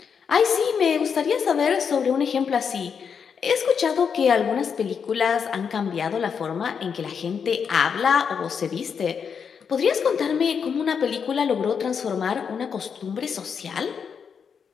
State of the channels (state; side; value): quieter; right; 6.7 dB